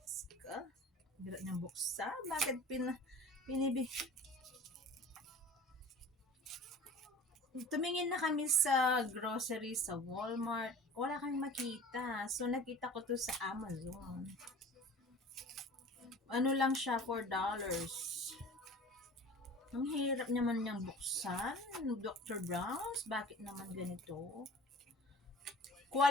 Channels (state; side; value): normal; both; correlation 0.42